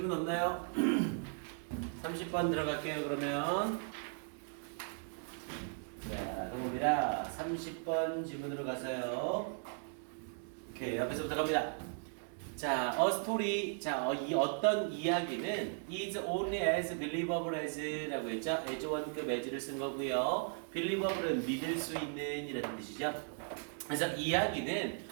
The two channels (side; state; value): left; silent; 53 dB below the other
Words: 없나요? 30번 들어갈게요. 그러면 자, 동호입니다. 30번 질문으로 가서요. 오케이, 앞에서부터 갑니다. 자, a story. 자, 이 어떤 이야기는 is only as believable as라고 했죠. as 원급 as를 쓴 거고요. believable은 믿을 수 있는 이라는 뜻이죠. 그래서 이야기는